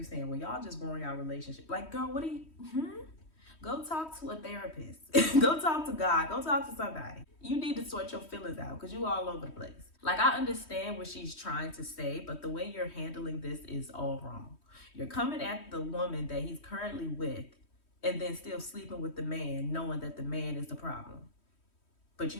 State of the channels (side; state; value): right; late; 3.1 ms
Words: saying, well, y'all just growing our relationship. Like, girl, what do you, Go talk to a therapist. Go talk to God. Go talk to somebody. You need to sort your feelings out because you all over the place. I understand what she's trying to say, but the way you're handling this is all wrong. You're coming at the woman that he's currently with and then still sleeping with the man, knowing that the man is the problem. But you